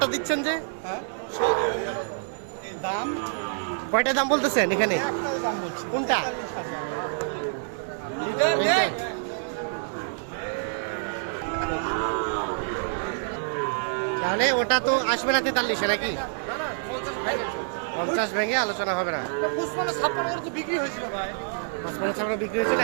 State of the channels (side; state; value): left; silent; digital silence